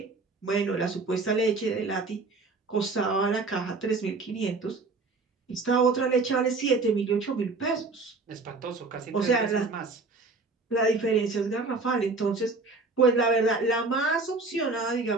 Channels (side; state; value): left; quieter; 3.8 dB